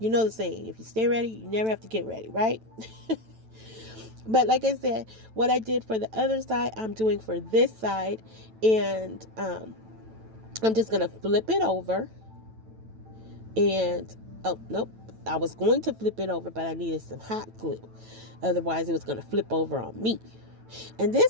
saying, if you stay ready, you never have to get ready, right? But like I said, what I did for the other side, I'm doing for this side, and I'm just gonna flip it over. And oh nope, I was going to flip it over, but I needed some hot glue, otherwise it was going to flip over on me. And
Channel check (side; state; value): left; late; 9.1 ms